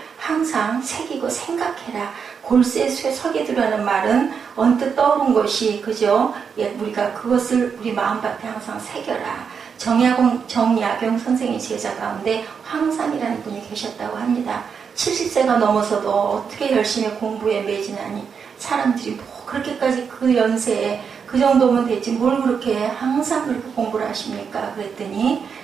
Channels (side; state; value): left; quieter; 6.4 dB